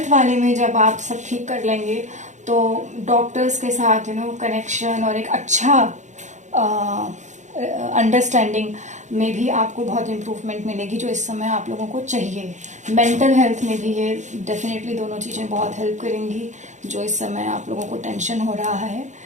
वाले में जब आप सब ठीक कर लेंगे तो डॉक्टर्स के साथ कनेक्शन और एक अच्छा अंडरस्टैंडिंग में भी आपको बहुत इम्प्रूवमेंट मिलेगी, जो इस समय आप लोगों को चाहिए। मेंटल हेल्थ में भी ये डेफिनेटली दोनों चीज़ें बहुत हेल्प करेंगी, जो इस समय आप लोगों को टेंशन हो रहा है,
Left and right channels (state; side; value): late; left; 0.35 ms